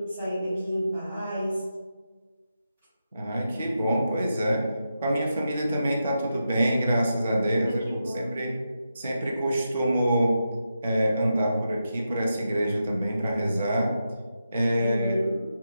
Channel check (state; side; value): inverted; both; correlation -0.87